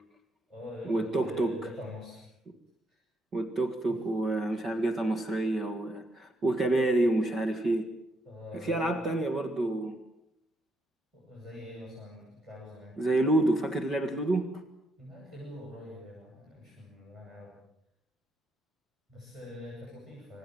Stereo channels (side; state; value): both; normal; correlation 0.77